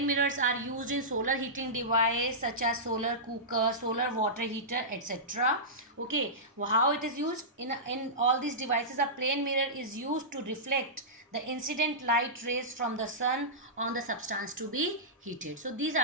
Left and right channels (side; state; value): both; normal; correlation -0.16